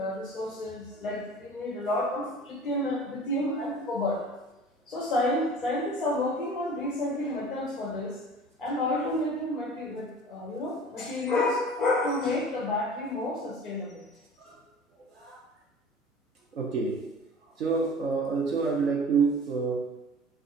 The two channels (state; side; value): normal; both; correlation 0.42